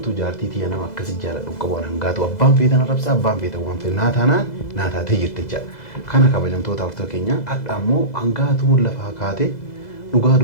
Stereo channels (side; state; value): right; late; 2.0 ms